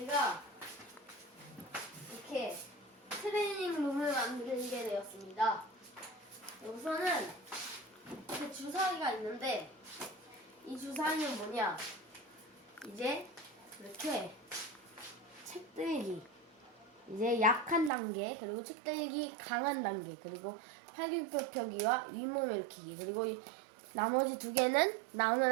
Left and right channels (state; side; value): drops out; left; at 17.9 s